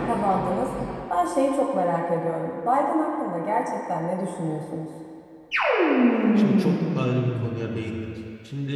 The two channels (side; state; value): both; identical; correlation 1.00